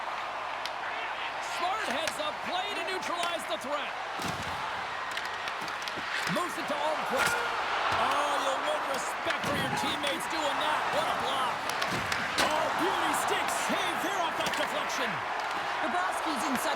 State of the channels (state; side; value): noise; right; hum, 26 dB below the sound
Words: Smart heads up play to neutralize the threat. Moves it to Almquist. Oh, you'll win respect for your teammates doing that. What a block. Oh, beauty stick save there off that deflection. Bobrovsky's in